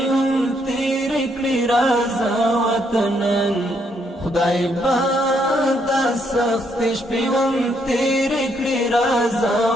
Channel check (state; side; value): normal; both; correlation 0.73